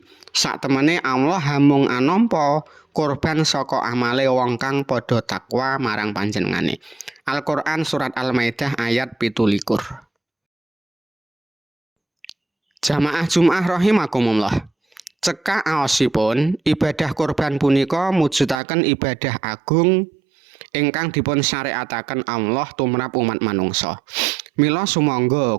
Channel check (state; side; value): drops out; left; at 18.6 s